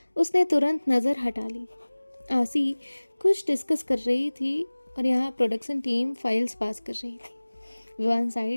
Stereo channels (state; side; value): inverted; both; correlation -1.00